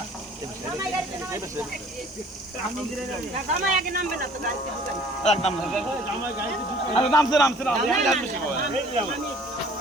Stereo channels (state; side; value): normal; both; correlation 0.52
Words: জামাই আগে নামবে না তো গাড়িতে ঢুকাই। একদম আরে নামছে নামছে না